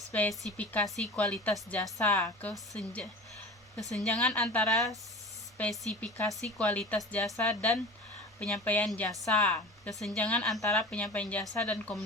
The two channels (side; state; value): both; normal; correlation 0.35